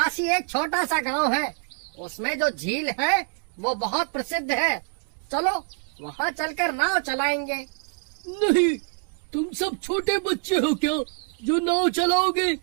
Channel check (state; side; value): quieter; left; 35.2 dB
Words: ही एक छोटा सा गांव है, उसमें जो झील है वो बहुत प्रसिद्ध है। चलो वहाँ चलकर नाव चलाएंगे। नहीं, तुम सब छोटे बच्चे हो क्या जो नाव चलाओगे?